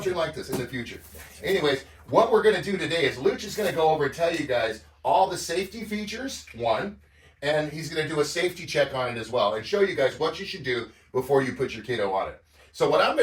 like this in the future. Anyways, what we're going to do today is Luch is going to go over and tell you guys all the safety features, one, and he's going to do a safety check on it as well and show you guys what you should do before you put your kiddo on it. So what I'm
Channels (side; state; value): both; identical; correlation 1.00